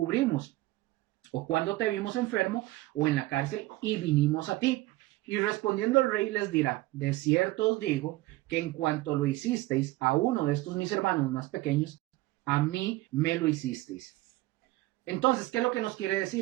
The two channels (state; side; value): quieter; left; 18.9 dB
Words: ¿O cuándo te vimos enfermo o en la cárcel y vinimos a ti? Y respondiendo el rey les dirá, de cierto os digo que en cuanto lo hicisteis a uno de estos mis hermanos más pequeños, a mí me lo hicisteis. Entonces, ¿qué es lo que nos quiere